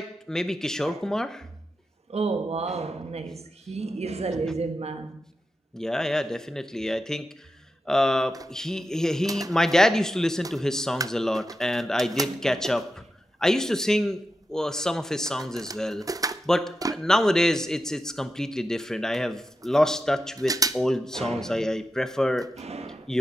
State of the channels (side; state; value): both; normal; correlation 0.89